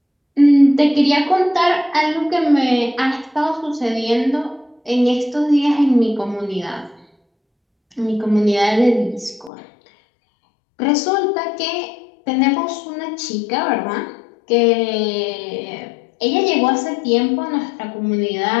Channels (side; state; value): right; drops out; at 9.5 s